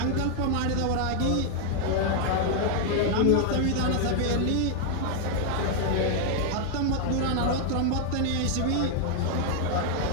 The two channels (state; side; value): different; both; correlation 0.00